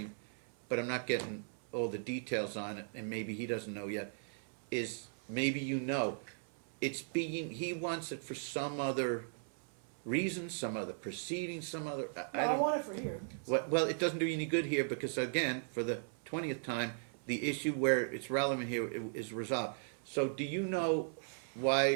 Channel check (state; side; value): silent; left; 53 dB below the other